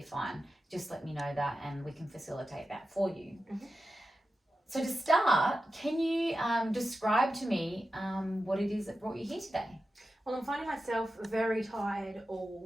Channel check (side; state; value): both; normal; correlation 0.91